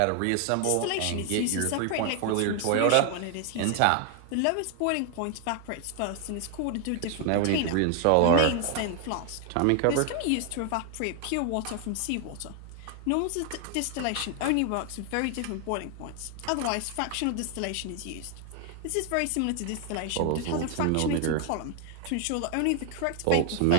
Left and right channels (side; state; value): both; different; correlation 0.00